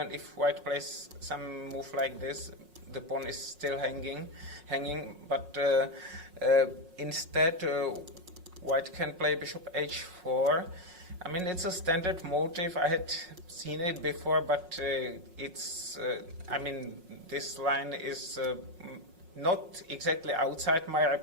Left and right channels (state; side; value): late; left; 5.5 ms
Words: if white plays some move like this, the pawn is still hanging. But instead, white can play bishop h4. I mean, it's a standard motive. I had seen it before, but it's, I mean, this line is not exactly outside my